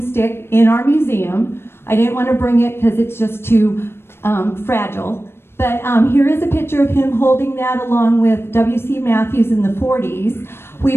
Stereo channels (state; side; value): late; right; 0.12 ms